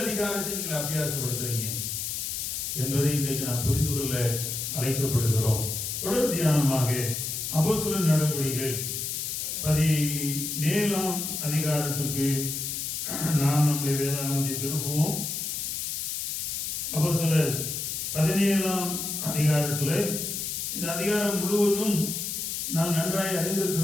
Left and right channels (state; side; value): noise; left; hiss, 3 dB below the sound